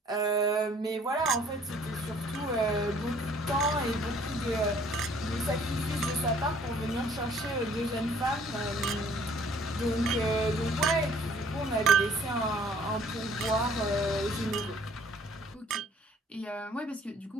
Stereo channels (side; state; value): both; normal; correlation 0.57